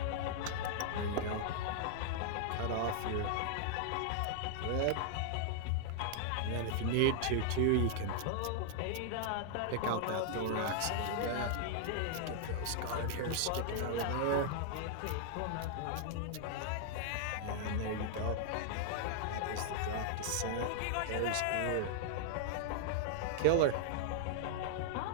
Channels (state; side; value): different; both; correlation -0.01